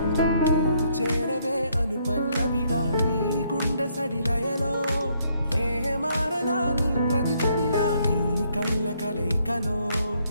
నువ్వు చేరవే అను పల్లవిగా నీ గుండె సడిలయలో నే మారనా నీ ప్రతిధ్వనిలా నీ కనుల కలయికలో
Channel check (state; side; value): inverted; both; correlation -0.70